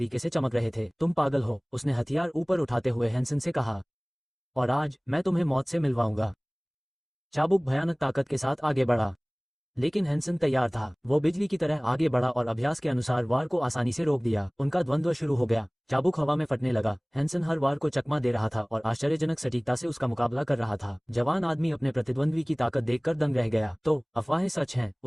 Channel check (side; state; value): both; identical; correlation 1.00